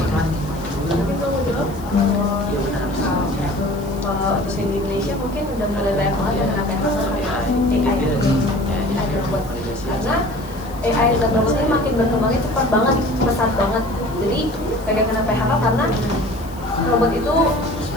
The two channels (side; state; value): left; noise; hiss, 22 dB below the sound